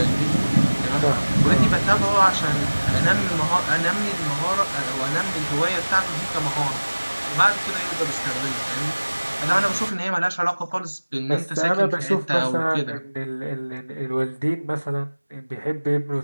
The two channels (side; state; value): both; inverted; correlation -1.00